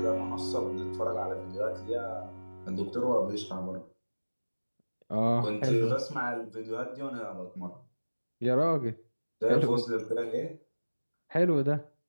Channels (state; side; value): inverted; both; correlation -1.00